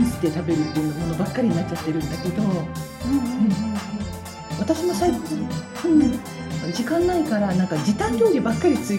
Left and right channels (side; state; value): both; identical; correlation 1.00